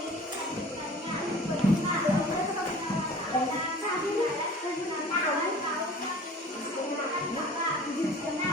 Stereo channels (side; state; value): both; normal; correlation 0.44